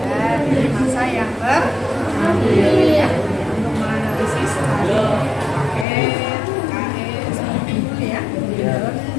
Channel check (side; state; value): right; drops out; at 5.9 s